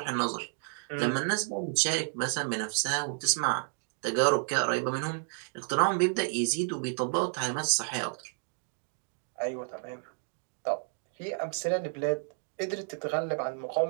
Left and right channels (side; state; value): left; silent; 57 dB below the other